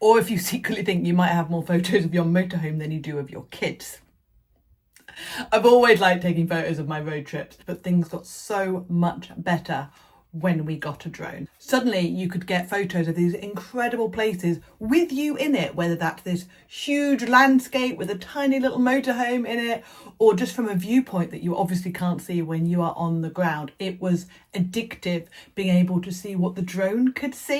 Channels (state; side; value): identical; both; correlation 1.00